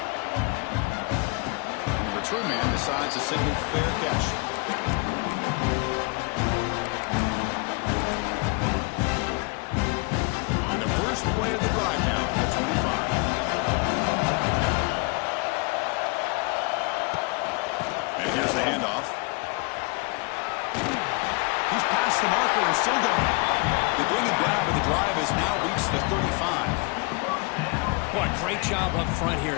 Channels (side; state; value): right; quieter; 29.8 dB